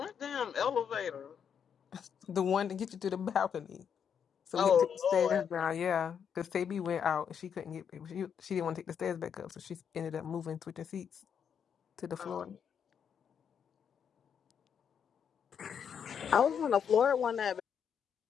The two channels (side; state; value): right; quieter; 7.6 dB